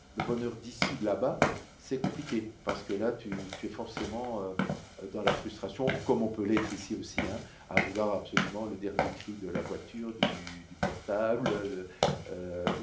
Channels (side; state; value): both; identical; correlation 1.00